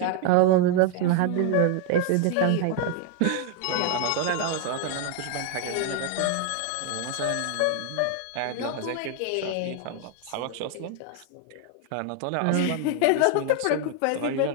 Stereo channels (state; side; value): different; both; correlation 0.01